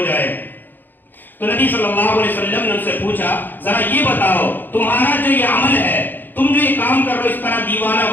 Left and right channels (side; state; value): right; late; 0.091 ms